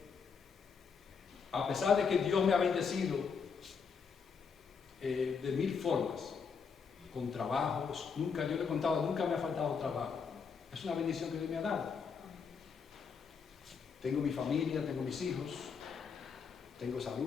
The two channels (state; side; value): quieter; right; 5.9 dB